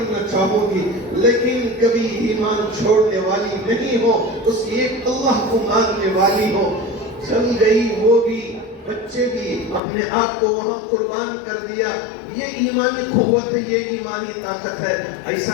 چاہوں گی، لیکن کبھی ایمان چھوڑنے والی نہیں ہو، اس ایک اللہ کو ماننے والی ہو۔ چل گئی وہ بھی، بچے بھی اپنے آپ کو وہاں قربان کر دیا. یہ ایمانی قوت ہے, یہ ایمانی طاقت ہے.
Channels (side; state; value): right; drops out; at 9.8 s